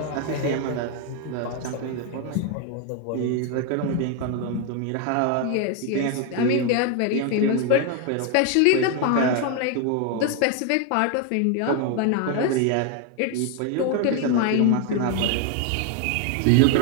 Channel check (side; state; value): both; different; correlation 0.01